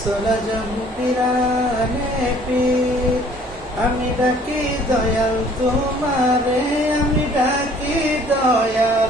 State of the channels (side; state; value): both; normal; correlation 0.56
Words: আজম পিরানে পীর, আমি ডাকি দয়াল তোমারে, আমি ডাকি দয়াল